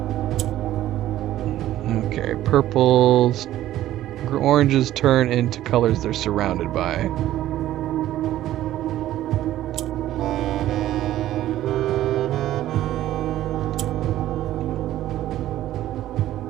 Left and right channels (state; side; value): quieter; left; 13.6 dB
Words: Okay, purples, oranges turn into colors they're surrounded by.